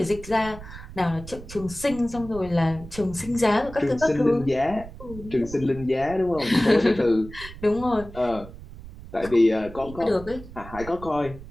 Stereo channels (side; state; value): right; noise; rumble, 15 dB below the sound